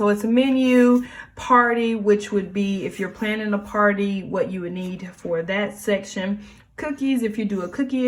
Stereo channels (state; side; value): identical; both; correlation 1.00